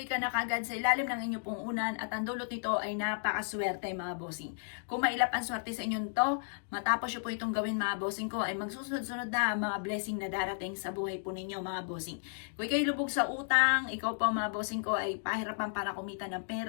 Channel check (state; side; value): silent; right; digital silence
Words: ka na kagad sa ilalim ng inyo pong unan at ang dulot nito ay napakaswerte mga bossing. Kung mailap ang swerte sa inyo to, matapos nyo po itong gawin mga bossing ko, ay magsusunod-sunod na mga blessing na darating sa buhay po ninyo mga bossing. Kung kayo lubog sa utang, ikaw po mga bossing ko ay pahirapan para kumita ng